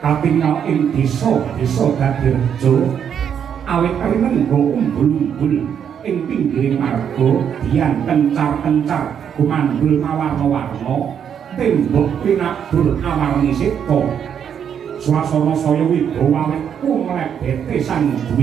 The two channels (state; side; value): quieter; left; 8.2 dB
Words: katingal ing desa dadi reja awit rinengga umbul-umbul ing pinggiring marga dian kencar-kencar gumandul mawarna-warna tembok pinabur awarni seta swasana saya wibawa awit kumlebete sang